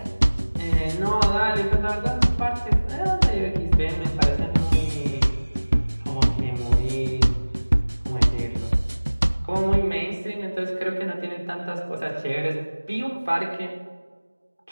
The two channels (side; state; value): both; inverted; correlation -1.00